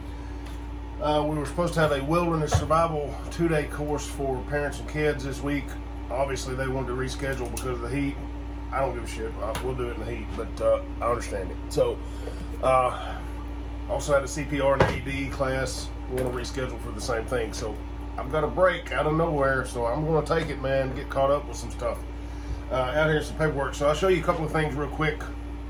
We were supposed to have a wilderness survival 2-day course for parents and kids this week. Obviously, they wanted to reschedule because of the heat. I don't give a shit. We'll do it in the heat, but I understand it. So, also had a CPR and AED class. We want to reschedule for the same thing. So, I've got a break out of nowhere, so I'm going to take it, man, get caught up with some stuff. Out here some paperwork. So I'll show you a couple of things real quick.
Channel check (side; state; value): both; identical; correlation 1.00